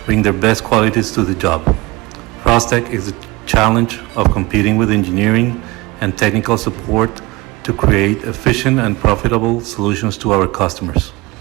bring their best qualities to the job. Froztec is the challenge of competing with engineering and technical support to create efficient and profitable solutions to our customers.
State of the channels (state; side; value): quieter; left; 22.7 dB